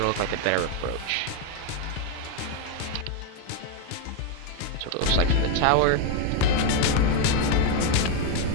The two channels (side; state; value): both; different; correlation 0.02